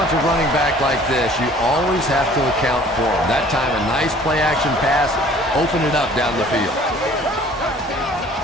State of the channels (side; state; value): both; normal; correlation 0.52